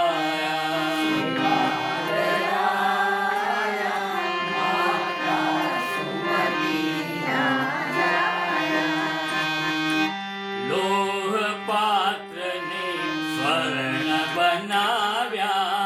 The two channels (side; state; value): both; identical; correlation 1.00